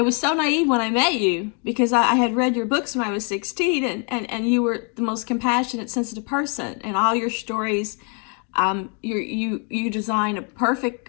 was so naive when I met you because I had read your books when I was 16, and you were the most compassionate, sensitive person. And all your stories, you design a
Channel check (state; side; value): quieter; right; 38.0 dB